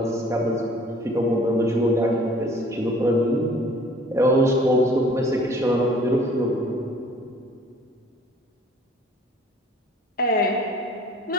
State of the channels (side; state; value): both; normal; correlation 0.53